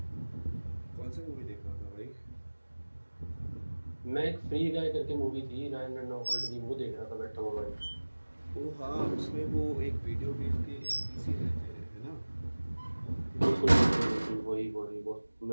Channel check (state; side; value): inverted; both; correlation -1.00